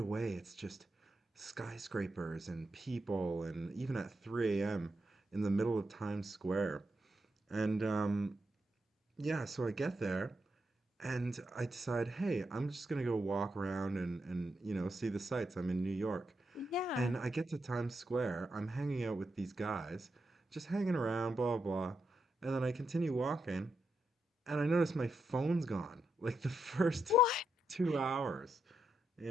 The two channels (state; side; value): normal; both; correlation 0.83